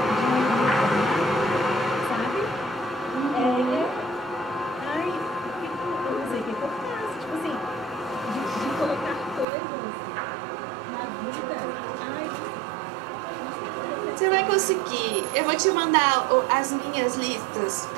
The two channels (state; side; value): drops out; left; at 9.5 s